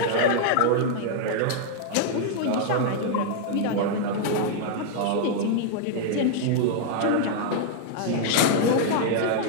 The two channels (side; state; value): both; different; correlation -0.01